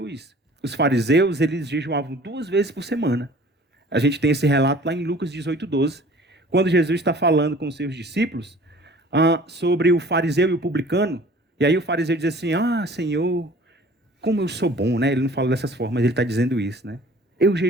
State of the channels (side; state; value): both; normal; correlation 0.49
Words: os fariseus eles jejuavam 2 vezes por semana. A gente tem esse relato lá em Lucas 18:12, quando Jesus está falando com os seus discípulos sobre o fariseu e o publicano. E aí o fariseu diz assim, Senhor, como eu sou bom, né? Ele não fala dessas formas, ele está dizendo isso, né? Eu